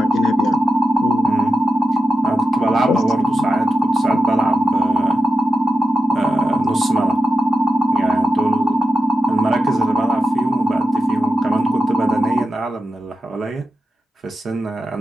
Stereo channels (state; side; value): normal; both; correlation 0.90